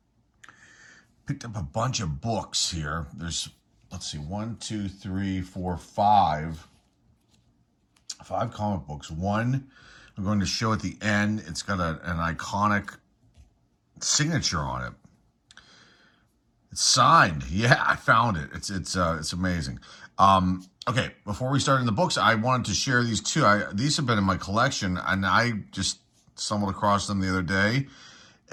Picked up a bunch of books here. There's, let's see, 5 comic books. One I'm going to show at the end. It's got an iconic signature on it. It's signed. Yeah, I found it. It's amazing. Okay, before we start in the books, I wanted to share these two. These have been in my collection, and I just stumbled across them the other day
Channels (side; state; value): both; identical; correlation 1.00